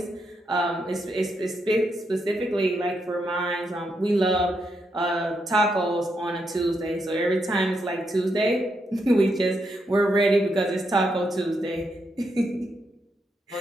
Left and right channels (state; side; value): normal; both; correlation 0.81